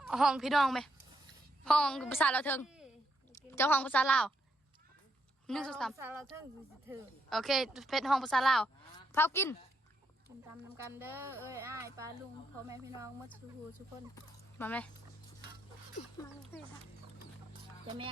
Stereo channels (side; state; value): both; normal; correlation 0.77